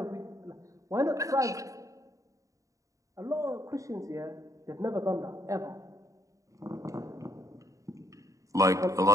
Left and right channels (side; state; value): left; late; 0.16 ms